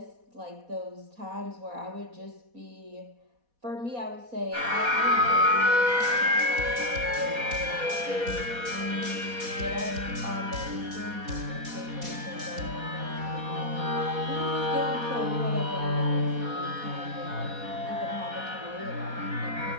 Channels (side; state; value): left; late; 4.1 ms